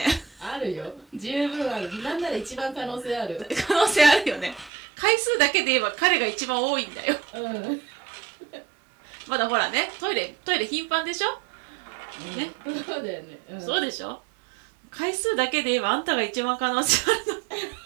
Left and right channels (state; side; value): drops out; left; at 4.7 s